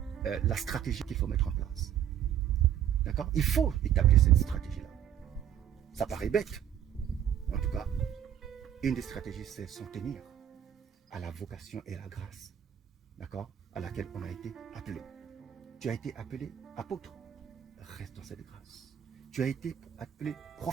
la stratégie qu'il faut mettre en place? D'accord? Il faut établir cette stratégie-là. Ça paraît bête. En tout cas, une des stratégies, c'est s'en tenir à la vocation et à la grâce, d'accord, à laquelle on a été appelé. Tu as été appelé apôtre, reste dans cette grâce. Tu as été appelé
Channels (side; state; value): left; quieter; 10.0 dB